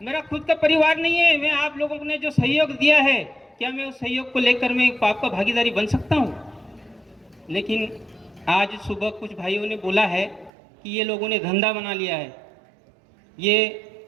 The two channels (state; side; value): drops out; left; at 10.5 s